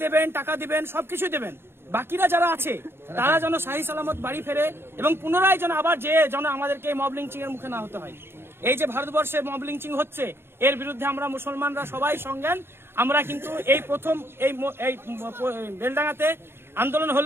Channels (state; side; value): late; left; 0.11 ms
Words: দেবেন, টাকা দিবেন, সবকিছু দেবেন। বাকিরা যারা আছে তারা যেন শাহী সালামত বাড়ি ফেরে এবং পুনরায় যেন আবার যেন আমাদেরকে মব লিঞ্চিং এর মুখে না হতে হয়। এই যে ভারতবর্ষে মব লিঞ্চিং হচ্ছে, এর বিরুদ্ধে আমরা মুসলমানরা সবাই সংজ্ঞান। আমরা কিন্তু এই প্রথম এই বেলডাঙ্গাতে আন্দোলন